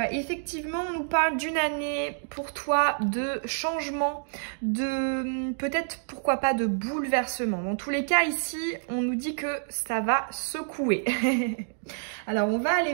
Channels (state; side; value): silent; left; digital silence